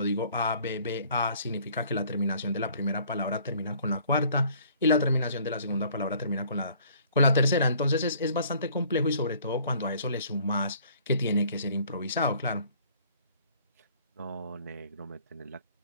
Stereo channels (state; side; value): inverted; both; correlation -0.57